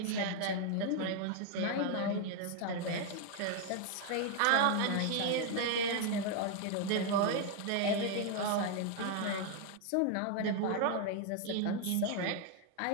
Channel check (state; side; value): different; both; correlation 0.00